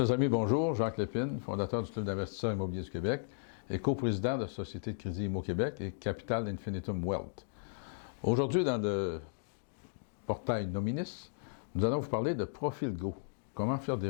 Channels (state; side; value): silent; right; digital silence